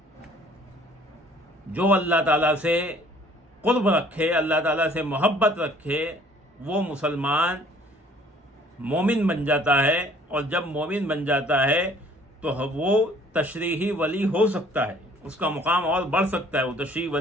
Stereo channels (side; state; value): both; normal; correlation 0.56